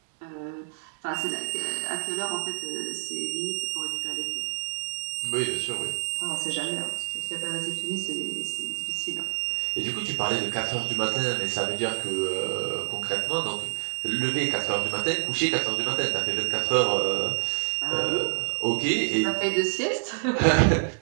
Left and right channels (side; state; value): left; silent; digital silence